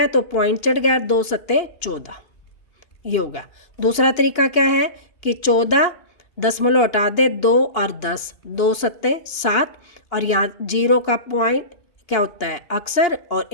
तो पॉइंट चढ़ गया, 2 सत्ते 14, ये होगा। दूसरा तरीका क्या है कि 14 दशमलव हटा दे, 2 और 10, 2 सत्ते 7, और यहाँ 0 का पॉइंट क्या होता है अक्सर, और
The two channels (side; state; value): right; late; 2.8 ms